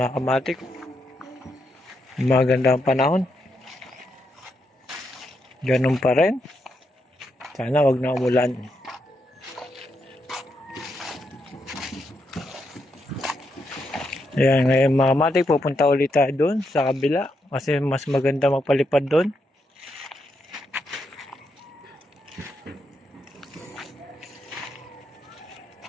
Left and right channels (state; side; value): normal; both; correlation 0.81